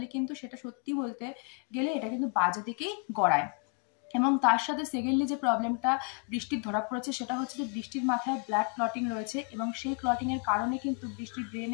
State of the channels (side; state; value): right; quieter; 37.7 dB